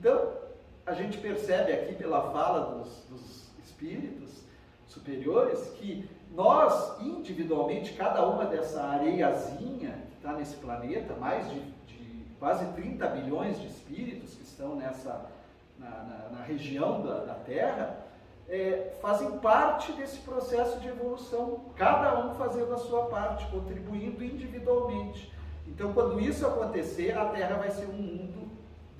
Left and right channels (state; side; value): identical; both; correlation 1.00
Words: a gente percebe aqui pela fala dos espíritos superiores que nós, individualmente, cada uma dessa areiazinha que está nesse planeta, mais de quase 30 bilhões de espíritos que estão na região da Terra, fazem parte desse processo de evolução, cada um fazendo a sua parte, contribuindo individualmente. Então, quando isso acontecer, a Terra vai ser um mundo